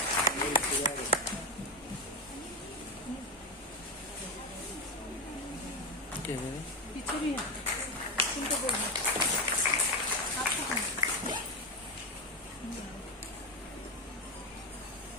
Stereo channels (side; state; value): both; normal; correlation 0.12